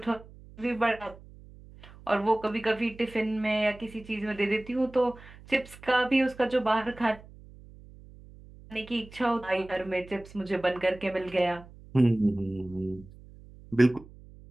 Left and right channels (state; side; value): noise; right; hum, 20 dB below the sound